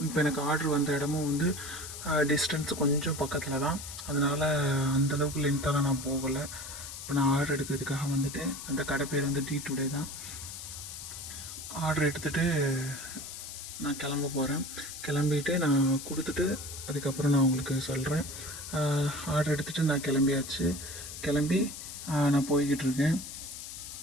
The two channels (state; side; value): noise; left; hiss, 10 dB below the sound